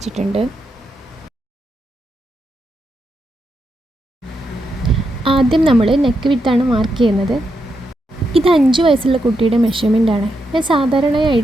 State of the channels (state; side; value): normal; both; correlation 0.83